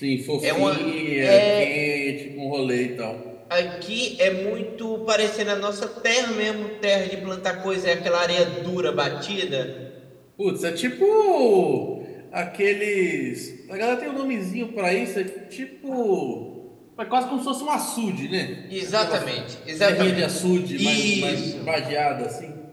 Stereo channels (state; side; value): identical; both; correlation 1.00